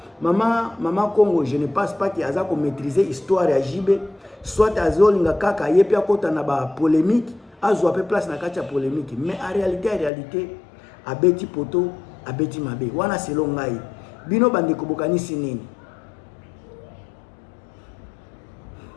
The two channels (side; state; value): right; drops out; at 10.1 s